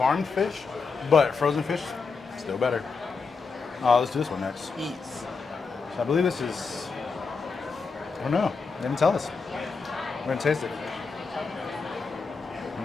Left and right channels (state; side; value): quieter; right; 4.8 dB